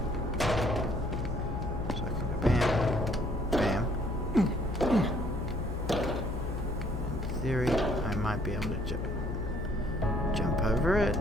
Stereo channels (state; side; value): noise; left; hum, 4 dB below the sound